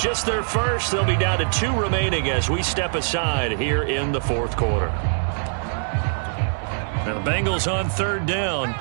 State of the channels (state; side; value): silent; left; 63 dB below the other